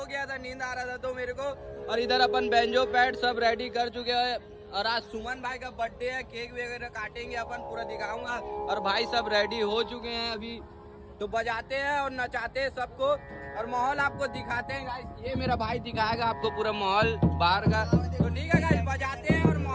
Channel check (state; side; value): identical; both; correlation 1.00